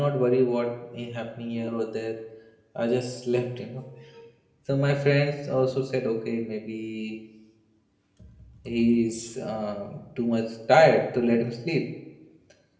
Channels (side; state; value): both; identical; correlation 1.00